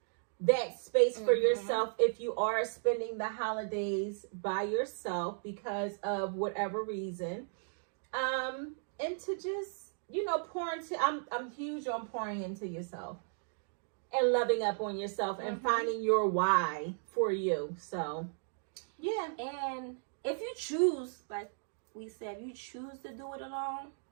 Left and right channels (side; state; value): left; silent; digital silence